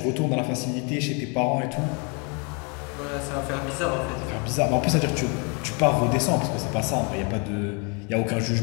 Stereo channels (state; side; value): quieter; right; 34.2 dB